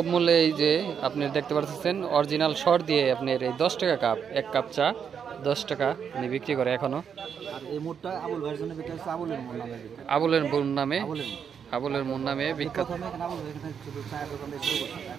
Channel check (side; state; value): left; quieter; 7.3 dB